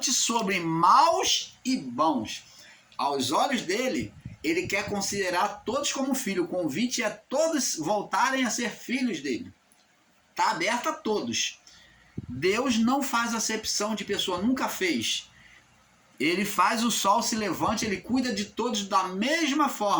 sobre maus e bons. Aos olhos dele, ele quer considerar todos como filho. O convite é todos voltarem a ser filhos dele. Está aberto a todos. Deus não faz acepção de pessoa, nunca fez. Ele faz o sol se levante, ele cuida de todos da mesma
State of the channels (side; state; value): both; identical; correlation 1.00